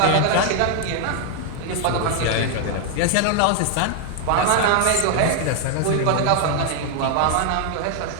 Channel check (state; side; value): different; both; correlation 0.00